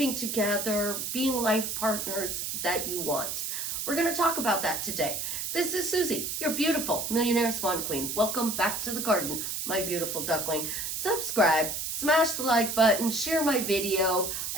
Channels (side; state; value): right; noise; hiss, 3 dB below the sound